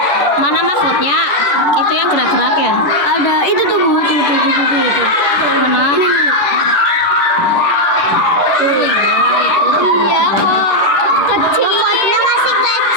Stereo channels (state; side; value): late; right; 11 ms